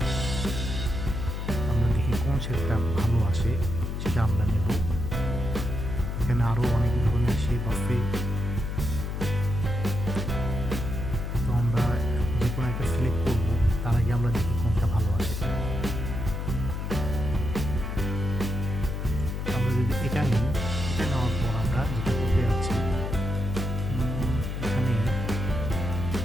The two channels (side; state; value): left; noise; hum, 3 dB below the sound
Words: আমরা দেখি কোন শেপটা ভালো আসে সেটা আমরা নেব। এখানে আরও অনেক ধরনের শেপ আছে। তো আমরা যে কোনো একটা সিলেক্ট করব, তার আগে আমরা দেখি কোনটা ভালো আসে। আমরা যদি এটা নিই,